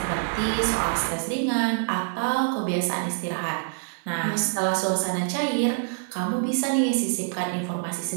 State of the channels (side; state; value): left; silent; digital silence